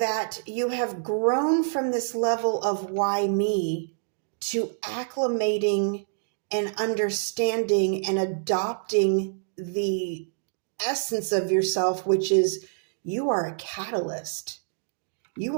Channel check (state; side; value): silent; left; digital silence